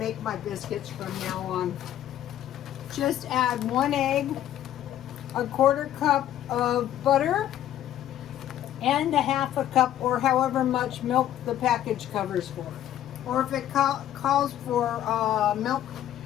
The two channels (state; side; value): quieter; right; 11.9 dB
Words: my biscuits from now on. Just add 1 egg, 1/4 cup of butter, and a half a cup or however much milk the package covers for. Or if it calls for milk,